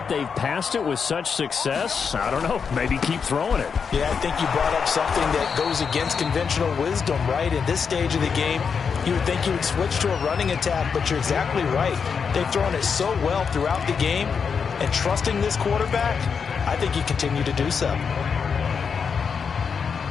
they've passed it with such success, I don't know, maybe keep throwing it. Yeah, I think you brought up something that goes against conventional wisdom, right? In this stage of the game, you would think you would switch to a running attack, but you're exactly right. They've thrown it so well throughout the game, and trusting this quarterback, I think you continue to do so.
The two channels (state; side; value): quieter; right; 6.1 dB